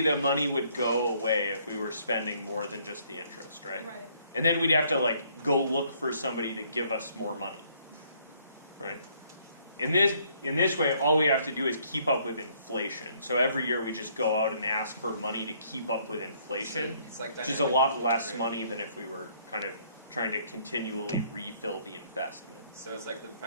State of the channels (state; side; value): inverted; both; correlation -0.65